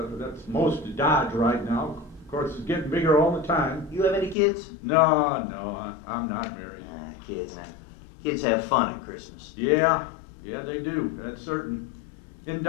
most of Dodge right now. Of course, it's getting bigger all the time. You have any kids? No, I'm not married. Kids. Kids have fun at Christmas. Yeah, they do. That's certain. In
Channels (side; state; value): right; drops out; at 4.4 s